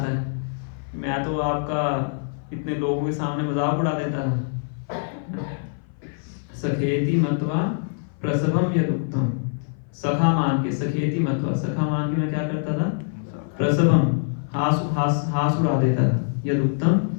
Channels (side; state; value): right; silent; 58 dB below the other